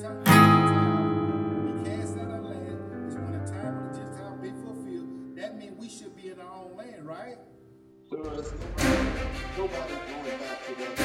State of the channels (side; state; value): both; identical; correlation 1.00